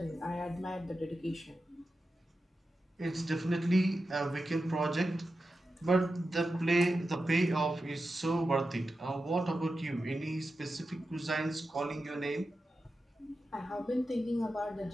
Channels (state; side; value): normal; both; correlation 0.91